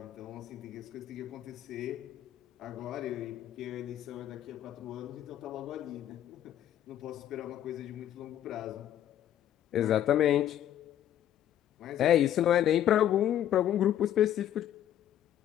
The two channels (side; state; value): right; quieter; 11.2 dB